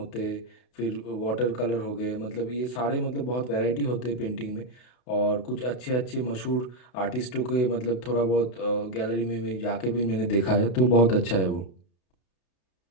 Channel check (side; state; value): right; late; 32 ms